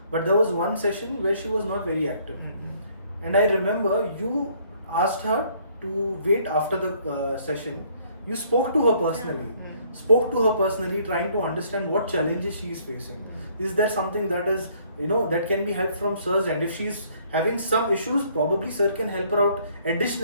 But there was one session where she was not very active. And I remember you asked her to wait after the session. You spoke to her personally. Trying to understand what challenges she is facing. Is there something that is, that can be helped from sir's end? If she's having some issues, probably sir can help her out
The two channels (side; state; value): both; inverted; correlation -0.63